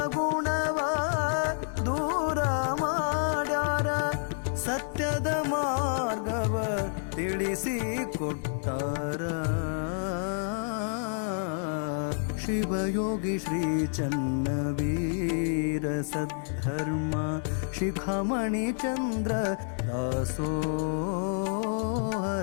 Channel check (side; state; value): right; silent; 59 dB below the other